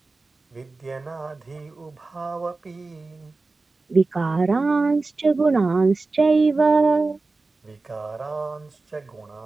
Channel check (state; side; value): quieter; left; 3.6 dB